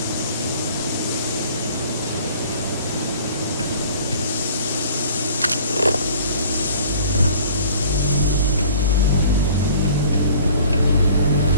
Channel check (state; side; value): inverted; both; correlation -0.50